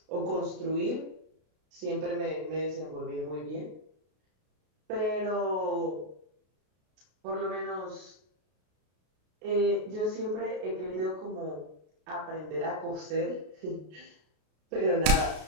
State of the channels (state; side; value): late; left; 33 ms